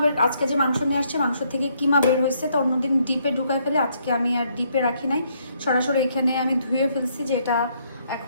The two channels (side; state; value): both; inverted; correlation -0.71